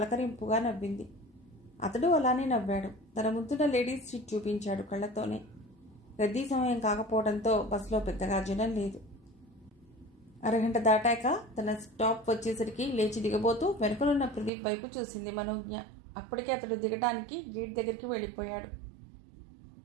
నవ్వింది. అతడు అలానే నవ్వాడు. తన ముందున్న లేడీస్ సీట్ చూపించాడు కళ్ళతోనే. రద్దీ సమయం కాకపోవడంతో బస్సులో పెద్దగా జనం లేదు. అరగంట దాటాక తన స్టాప్ వచ్చేసరికి లేచి దిగబోతూ వెనుకలున్న ప్రదీప్ వైపు చూసింది మనోజ్ఞ. అప్పటికే అతడు దిగడానికి గేట్ దగ్గరికి వెళ్ళిపోయాడు.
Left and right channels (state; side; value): drops out; left; at 14.5 s